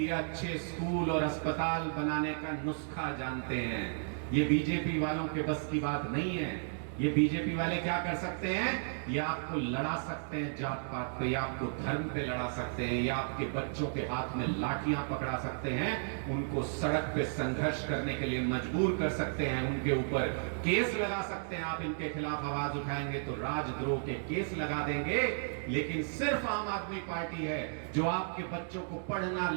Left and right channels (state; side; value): silent; left; digital silence